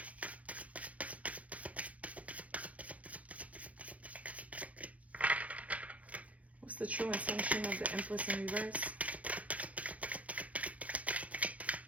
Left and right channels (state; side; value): late; left; 0.067 ms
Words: What's the true intention of the Empress in reverse?